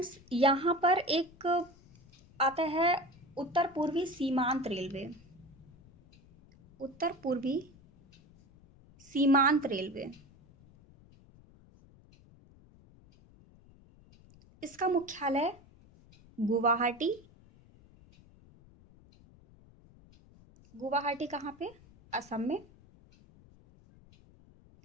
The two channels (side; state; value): left; noise; rumble, 25 dB below the sound